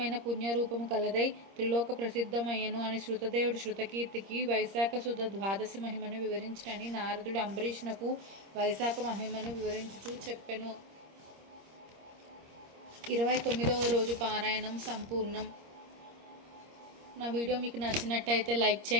పుణ్యరూపము కలదై త్రిలోక ప్రసిద్ధమయ్యను అని శృతదేవుడు శృతకీర్తికి వైశాఖ శుద్ధ ద్వాదశి మహిమను వివరించినని నారదుడు అంబరీషునకు వైశాఖ మహిమను వివరించుచూ చెప్పెను. 29వ రోజు పారాయణం సంపూర్ణం. నా వీడియో మీకు నచ్చినట్టయితే లైక్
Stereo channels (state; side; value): late; left; 26 ms